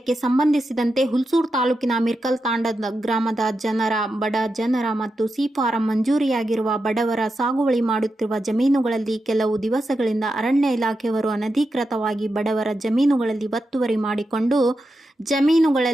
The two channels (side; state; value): both; normal; correlation 0.88